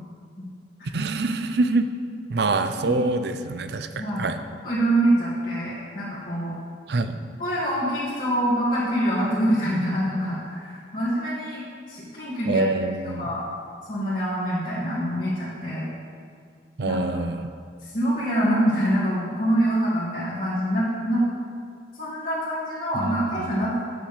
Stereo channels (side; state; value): both; normal; correlation 0.59